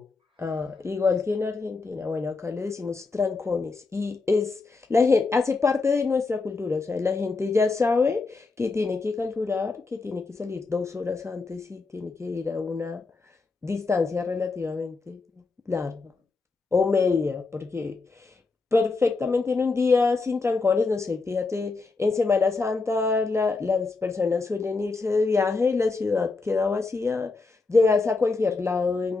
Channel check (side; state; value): right; quieter; 4.0 dB